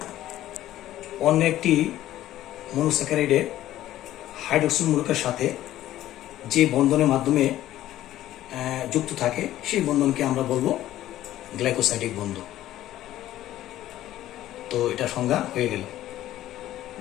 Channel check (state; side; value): quieter; right; 13.8 dB